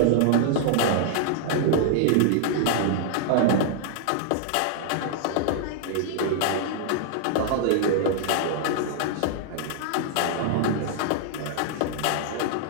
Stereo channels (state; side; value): different; both; correlation -0.01